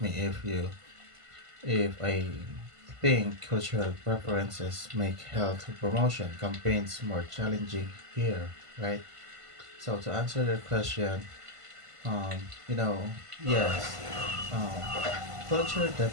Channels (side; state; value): left; late; 1.5 ms